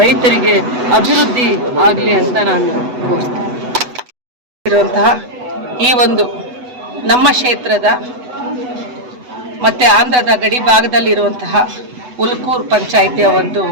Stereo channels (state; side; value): late; left; 8.1 ms